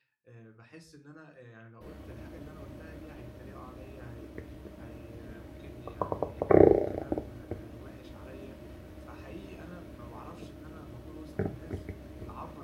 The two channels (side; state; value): both; identical; correlation 1.00